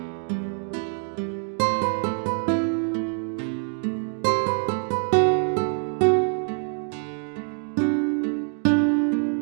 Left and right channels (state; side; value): silent; left; 56 dB below the other